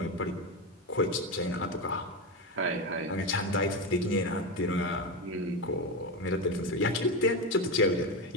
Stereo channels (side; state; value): both; normal; correlation 0.14